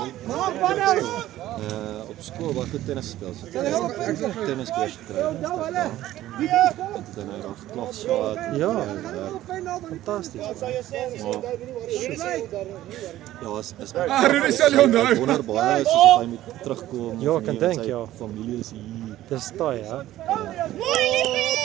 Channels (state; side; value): quieter; left; 14.3 dB